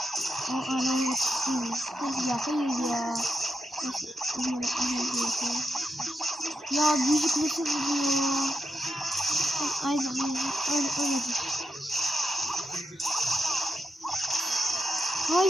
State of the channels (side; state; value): both; normal; correlation 0.86